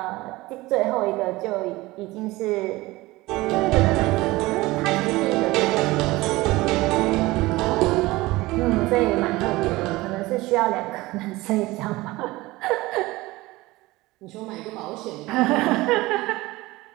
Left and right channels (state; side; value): quieter; left; 20.0 dB